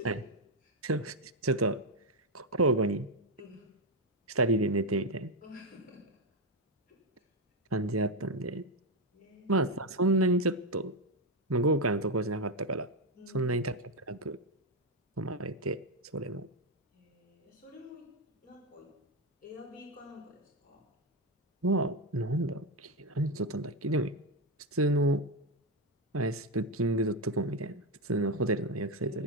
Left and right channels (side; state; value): both; normal; correlation 0.07